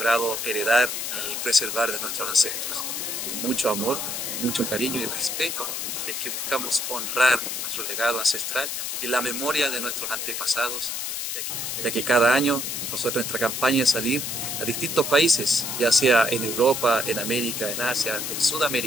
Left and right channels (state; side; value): noise; left; hiss, 3 dB below the sound